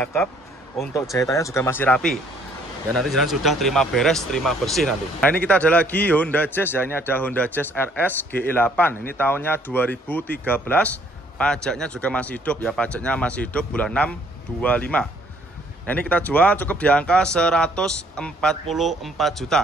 Untuk jahitannya juga masih rapi. Ya nanti jalan sudah terima beres, terima bersih nanti. Nah ini kita ada lagi Honda Jazz ya, ini ada Honda Jazz RS GE8. Ini tahunnya 2013. Pajaknya juga masih hidup ya, pajaknya masih hidup bulan 6 25. Nah ini kita jual cukup di angka 144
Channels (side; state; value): both; normal; correlation 0.63